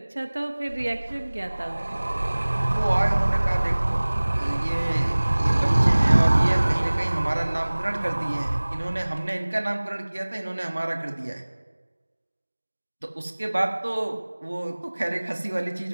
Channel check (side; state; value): both; inverted; correlation -1.00